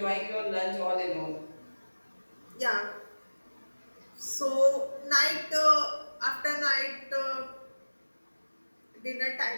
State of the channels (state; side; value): inverted; both; correlation -1.00